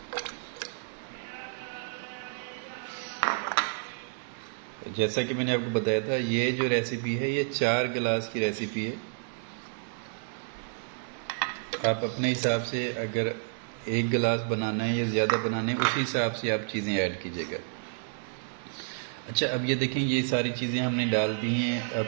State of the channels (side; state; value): left; silent; 58 dB below the other